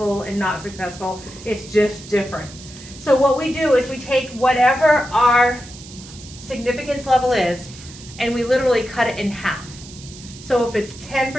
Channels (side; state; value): right; noise; hiss, 17 dB below the sound